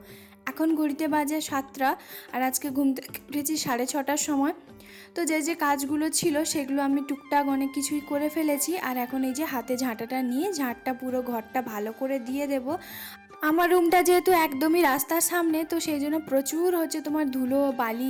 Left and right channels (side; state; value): both; identical; correlation 1.00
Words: এখন ঘড়িতে বাজে 7টা, আর আজকে ঘুম থেকে উঠেছি 6:30টার সময়। তো যে কাজগুলো ছিল সেগুলো আমি টুকটাক অনেক কিছুই করে ফেলেছি। আর এখন এই যে হাতে ঝাঁটাটা নিয়ে ঝাঁটটা পুরো ঘরটা ভালো করে দিয়ে দেব। আমার রুমটা যেহেতু একদমই রাস্তার সামনে, তো সেই জন্য প্রচুর তোমার ধুলো বালি